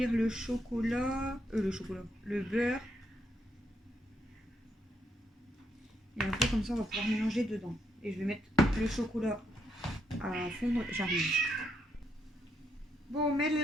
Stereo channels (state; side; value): normal; both; correlation 0.77